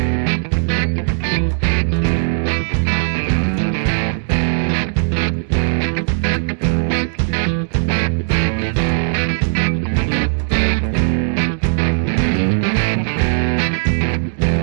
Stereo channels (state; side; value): silent; left; digital silence